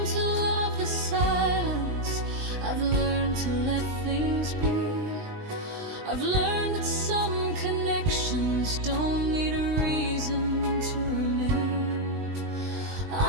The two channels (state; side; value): late; left; 20 ms